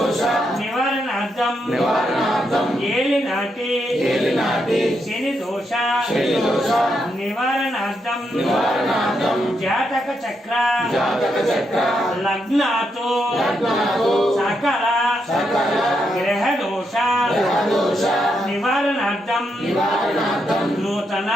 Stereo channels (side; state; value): both; normal; correlation 0.81